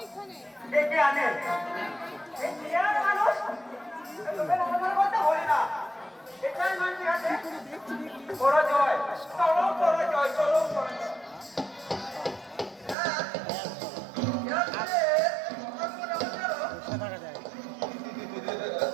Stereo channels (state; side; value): drops out; left; at 13.0 s